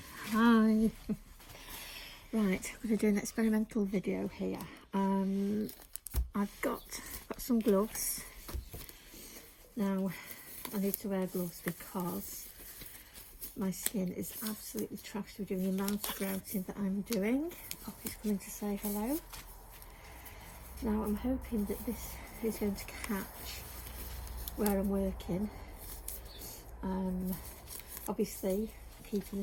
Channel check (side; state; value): both; identical; correlation 1.00